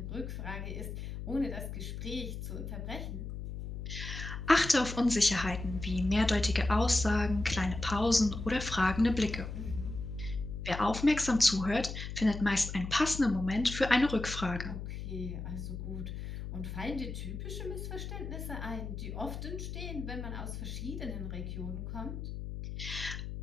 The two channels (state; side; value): noise; left; hum, 7 dB below the sound